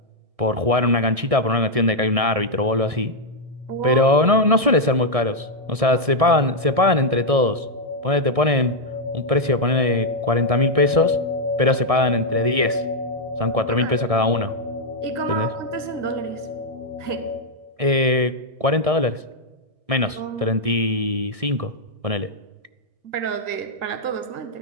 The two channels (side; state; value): left; late; 1.6 ms